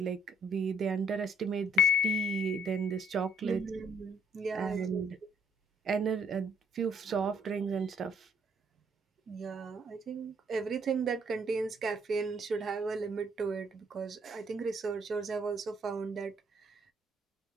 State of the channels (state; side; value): normal; both; correlation 0.66